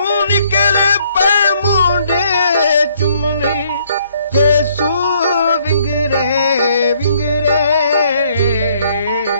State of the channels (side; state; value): both; inverted; correlation -0.66